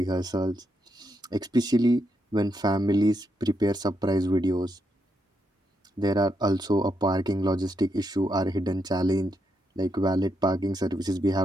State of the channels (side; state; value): both; normal; correlation 0.80